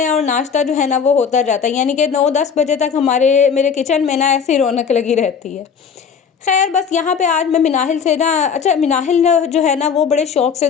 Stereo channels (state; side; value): quieter; right; 6.7 dB